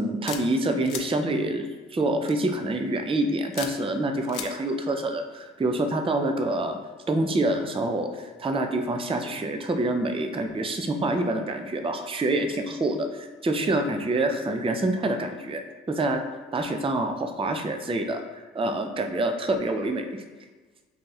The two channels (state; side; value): normal; both; correlation 0.56